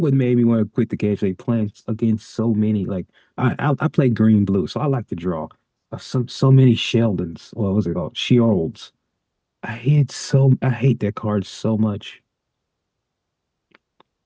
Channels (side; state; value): both; identical; correlation 1.00